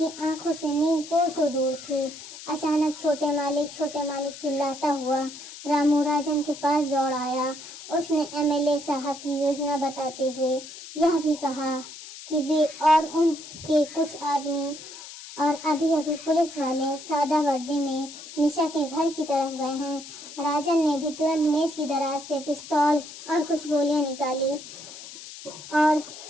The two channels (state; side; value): noise; left; hiss, 14 dB below the sound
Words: आंखों से नींद कोसों दूर थी। अचानक छोटे मालिक चिल्लाता हुआ रामू राजन के पास दौड़ आया। उसने एमएलए साहब की योजना बताते हुए यह भी कहा कि वे और उनके कुछ आदमी और अभी पुलिस वाले सादा वर्दी में निशा के घर की तरफ गए हैं। राजन ने भी तुरंत मेज की दराज से पिस्तौल और कुछ गोलियां निकाली और